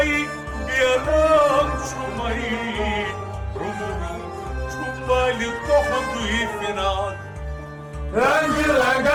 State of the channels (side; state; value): both; identical; correlation 1.00